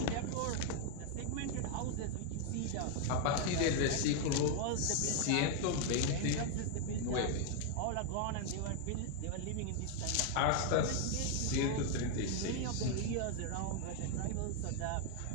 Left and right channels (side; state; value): both; different; correlation 0.00